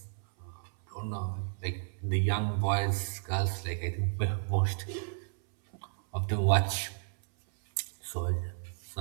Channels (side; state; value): left; silent; 56 dB below the other